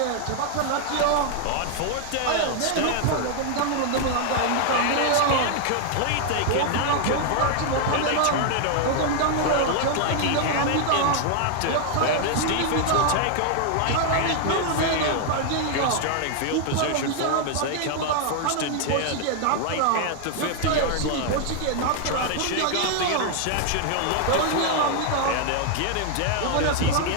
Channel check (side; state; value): both; different; correlation 0.00